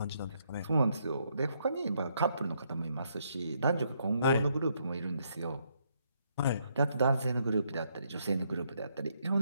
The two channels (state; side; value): inverted; both; correlation -0.74